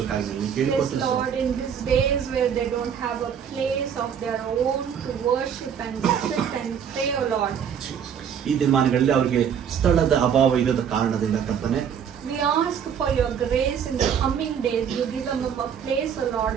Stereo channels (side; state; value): left; quieter; 7.9 dB